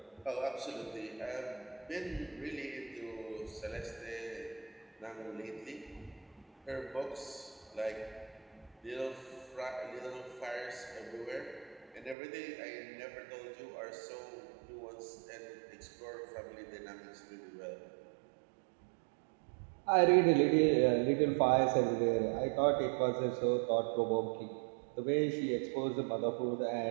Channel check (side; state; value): left; drops out; at 12.2 s